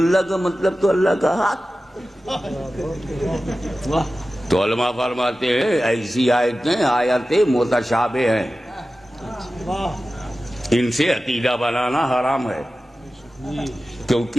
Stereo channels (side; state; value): both; normal; correlation 0.95